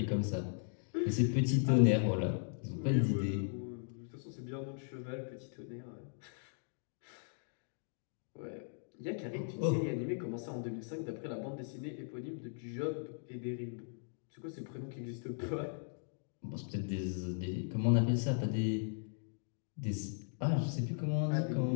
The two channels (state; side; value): silent; right; digital silence